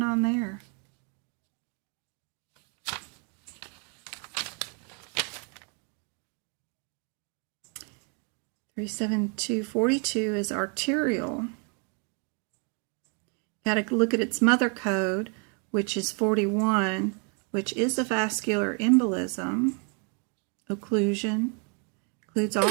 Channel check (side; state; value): left; quieter; 38.0 dB